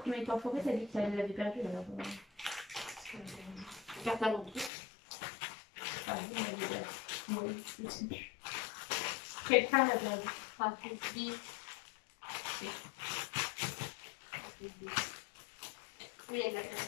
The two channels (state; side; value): drops out; right; at 4.7 s